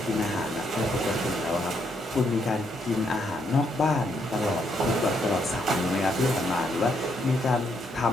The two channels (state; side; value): normal; both; correlation 0.75